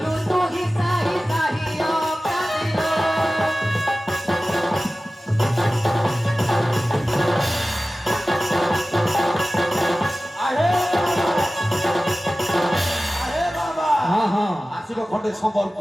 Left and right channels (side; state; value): both; normal; correlation 0.96